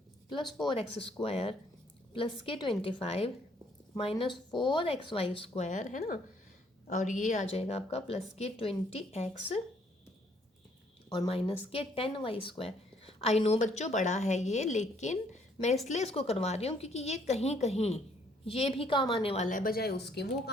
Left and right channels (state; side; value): normal; both; correlation 0.66